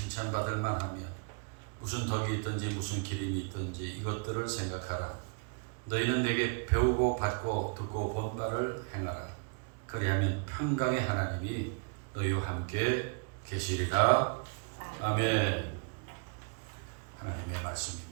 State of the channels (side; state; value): left; quieter; 39.0 dB